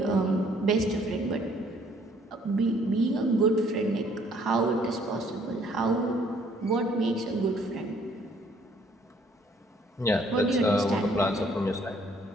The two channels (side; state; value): both; normal; correlation 0.62